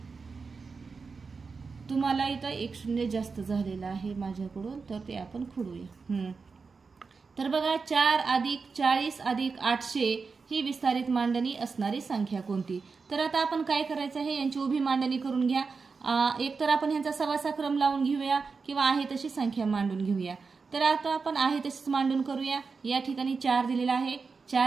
तुम्हाला इथं 1 शून्य जास्त झालेला आहे माझ्याकडून, तर ते आपण खोडूया. तर बघा 4 अधिक 40 अधिक 800 ही विस्तारित मांडणी असणारी संख्या कोणती. तर आता आपण काय करायचं आहे, यांची उभी मांडणी करून घ्या. एक तर आपण ह्यांचा सवासा क्रम लावून घेऊया किंवा आहे तशी संख्या मांडून घेऊया। तर आता आपण आहे तशीच मांडून करूया। या ठिकाणी 4 दिलेला आहे,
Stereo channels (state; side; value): quieter; left; 4.8 dB